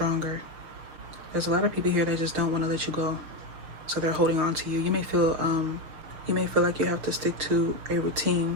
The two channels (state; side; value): late; left; 6.5 ms